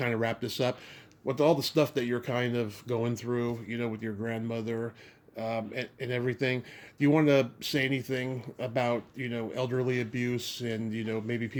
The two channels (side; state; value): both; identical; correlation 1.00